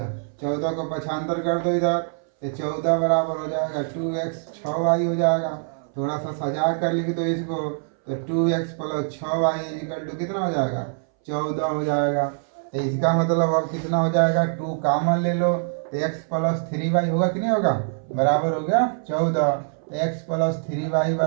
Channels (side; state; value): left; silent; 60 dB below the other